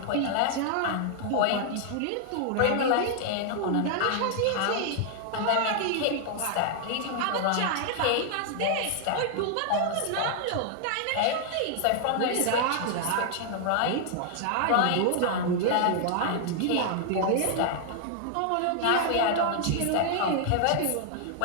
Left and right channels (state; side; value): different; both; correlation -0.01